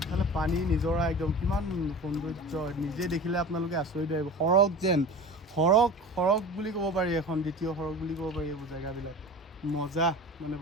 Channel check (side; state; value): both; normal; correlation 0.36